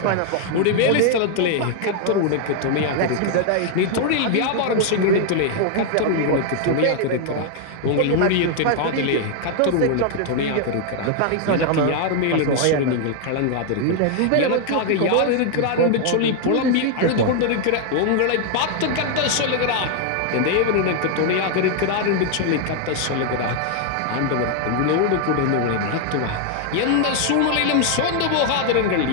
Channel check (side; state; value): both; different; correlation 0.00